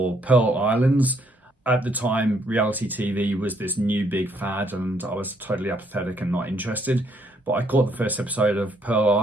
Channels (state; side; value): normal; both; correlation 0.70